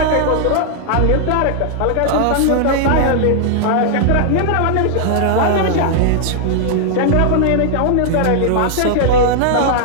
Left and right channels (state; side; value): different; both; correlation -0.01